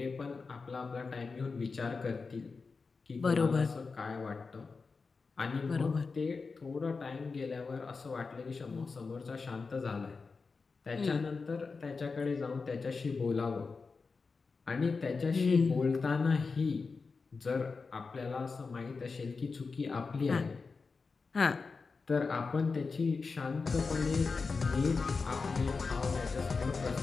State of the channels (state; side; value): quieter; right; 4.5 dB